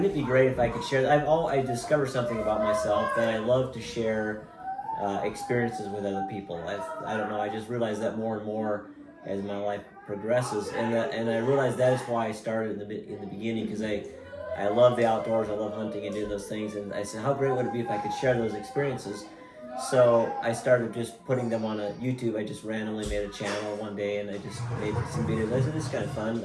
it be great if I could share? I discovered something about myself that I love to share experiences with other people. I don't know. I just realized that more and more as my life progresses, and I realized that is why I started in the beginning, because I love the outdoors. I love hunting and doing those things, and I said, how great would it be if I could share those experiences? So I started just putting them on a YouTube. I just randomly made a channel one day, and I just made some videos. I said, this is kind of fun.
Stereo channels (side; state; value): both; identical; correlation 1.00